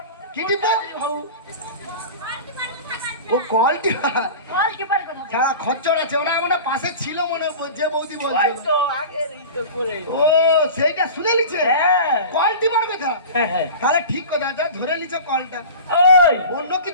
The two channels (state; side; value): inverted; both; correlation -0.35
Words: কি টিপো? হউ। ও কল টিপা। বল কি পারে কথা? যারা খচ্চর আছে ওরা মনে হয় পাশে ছিল মনে হয়, যে বৌদি ওই বলছে। তো আগের এই তো করে। ও সেইটা শুনে লিছে হ্যাঁ কল টিপার কথা। হ্যাঁ হ্যাঁ। তাহলে ঠিক কথা, যা ধরে লিছো কলটা। ওই অন্য